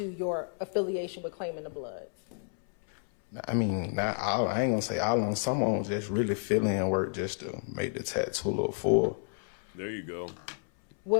your affiliation with claiming the blood? I mean, not all. I ain't gonna say all on. Some of them just really fill-in work just to make the tattoo look full. There you go.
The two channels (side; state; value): right; silent; 57 dB below the other